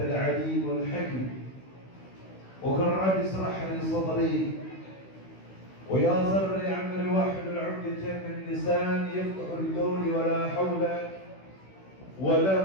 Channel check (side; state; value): right; late; 16 ms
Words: العليم الحكيم. وقل رب اشرح لي صدري ويسر لي أمري واحلل عقدة من لساني يفقهوا القول ولا حول